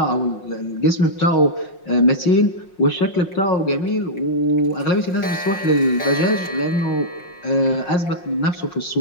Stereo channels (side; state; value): right; late; 5.5 ms